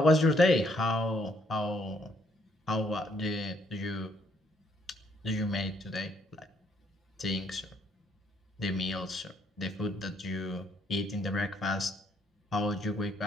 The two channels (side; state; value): both; normal; correlation 0.69